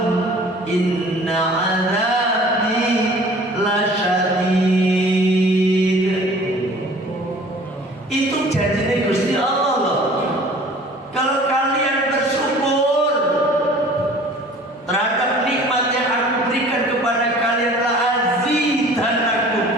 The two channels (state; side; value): normal; both; correlation 0.48